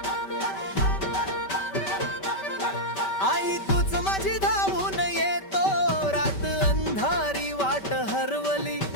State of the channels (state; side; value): late; right; 5.2 ms